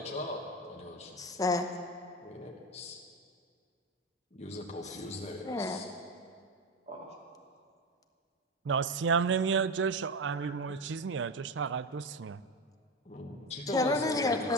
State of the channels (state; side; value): normal; both; correlation 0.18